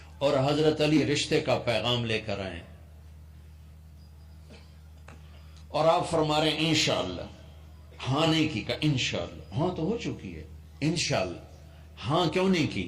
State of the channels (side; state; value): both; identical; correlation 1.00